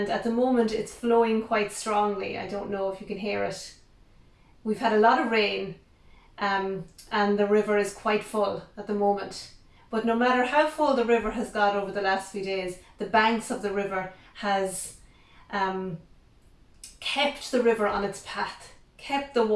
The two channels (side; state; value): both; identical; correlation 1.00